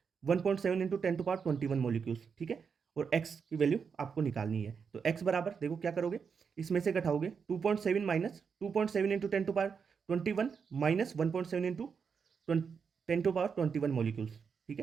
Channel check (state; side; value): quieter; left; 6.1 dB